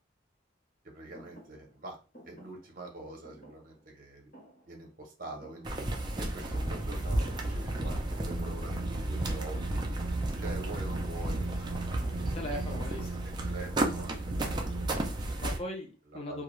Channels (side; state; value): both; normal; correlation 0.74